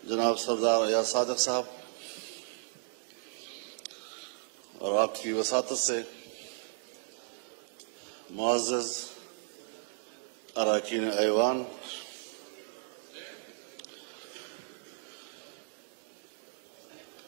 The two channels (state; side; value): silent; left; digital silence